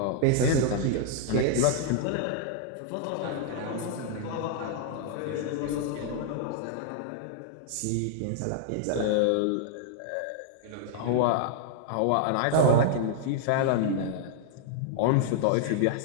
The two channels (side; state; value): both; different; correlation -0.01